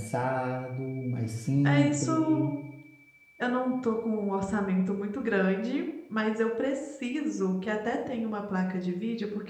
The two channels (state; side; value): identical; both; correlation 1.00